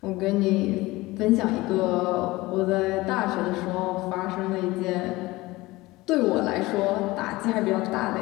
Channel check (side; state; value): right; quieter; 20.1 dB